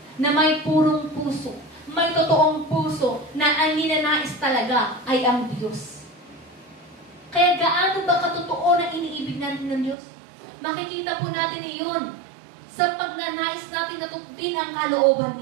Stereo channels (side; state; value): left; drops out; at 10.0 s